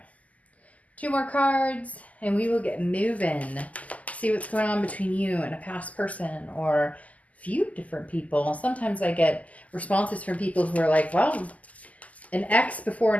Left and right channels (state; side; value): late; right; 0.074 ms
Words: 2 more cards and we will get moving. See what's going on between you and a past person or a few different people. Sometimes I get responses from people who are like, well, an ex before